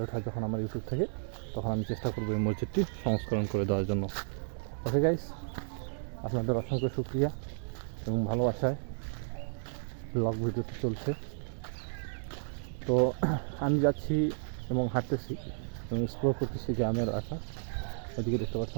হয় যখন আমার ইউটিউব থেকে, তখন আমি চেষ্টা করবো এই মসজিদটি সংস্করণ করে দেওয়ার জন্য। ওকে গাইস, আপনাদের অসংখ্য শুকরিয়া এবং ভালোবাসায় ব্লগ ভিডিওটি চলছে। তো আমি যাচ্ছি এবং হাঁটতেছি এবং এক্সপ্লোর করতেছি গ্রামের এলাকা। এদিকে দেখতে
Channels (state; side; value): silent; left; digital silence